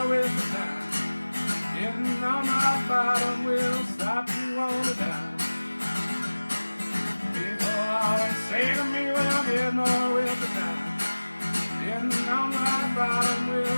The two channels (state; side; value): inverted; both; correlation -1.00